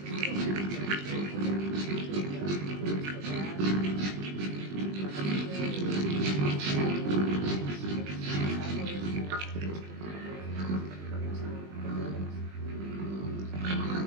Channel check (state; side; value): late; left; 20 ms